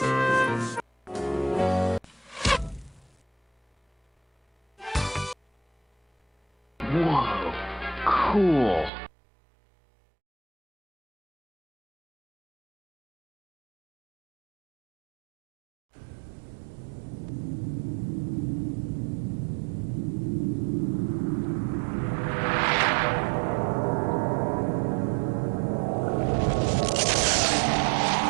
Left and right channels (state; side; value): drops out; left; at 8.9 s